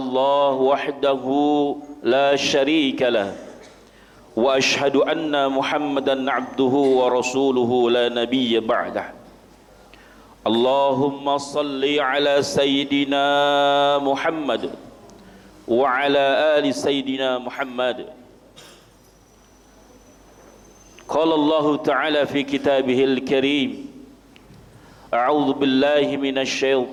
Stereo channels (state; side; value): identical; both; correlation 1.00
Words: wahdahu la syarika lahu wa ashhadu anna Muhammadan abduhu wa rasuluhu la nabiyya ba'dah. Allahumma salli ala sayyidina Muhammad wa ala ali sayyidina Muhammad. Qala Allah ta'ala fi kitabihil karim, a'udzu billahi minasy